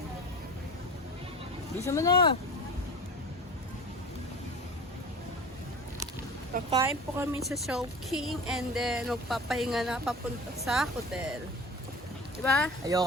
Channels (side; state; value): both; normal; correlation 0.36